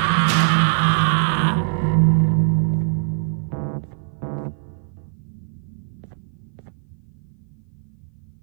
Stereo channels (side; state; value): left; silent; 56 dB below the other